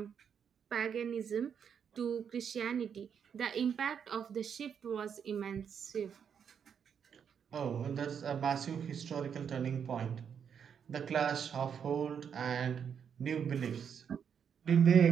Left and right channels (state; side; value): quieter; left; 7.5 dB